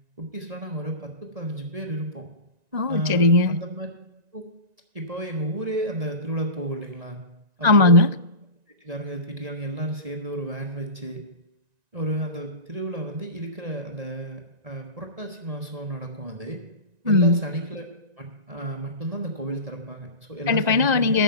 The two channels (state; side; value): late; left; 1.9 ms